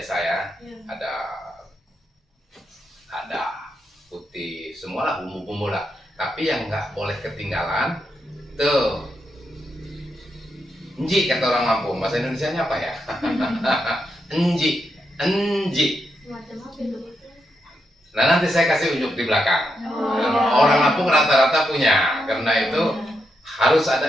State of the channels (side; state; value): both; normal; correlation 0.83